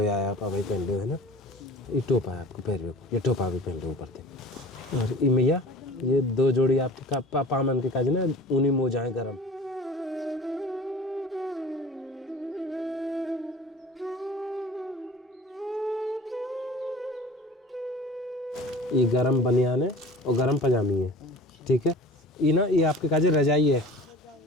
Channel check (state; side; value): normal; both; correlation 0.42